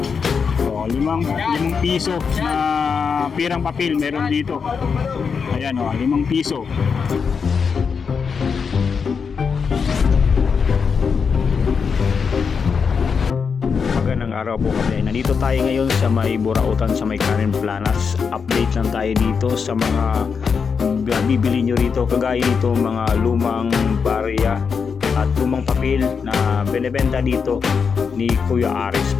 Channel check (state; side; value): quieter; right; 5.9 dB